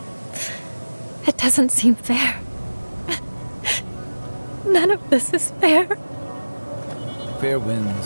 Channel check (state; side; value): inverted; both; correlation -1.00